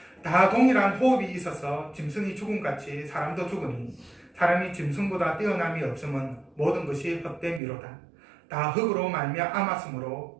다 동일한 호흡이 있어서 짐승이 죽음같이 사람도 죽으니 사람이 짐승보다 뛰어남이 없음은 모든 것이 헛됨이로다. 다 흙으로 말미암았으므로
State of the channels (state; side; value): drops out; left; at 7.6 s